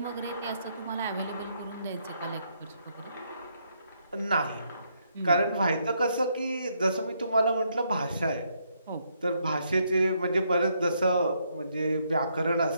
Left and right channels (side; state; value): both; inverted; correlation -0.75